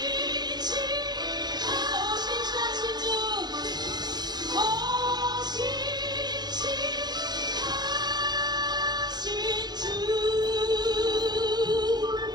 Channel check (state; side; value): late; left; 0.20 ms